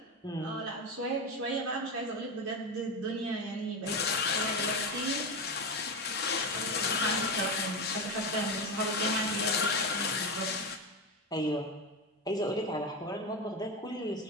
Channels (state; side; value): normal; both; correlation 0.16